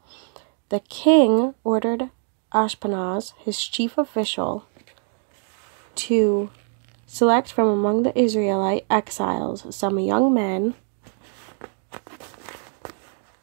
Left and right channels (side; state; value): left; silent; 63 dB below the other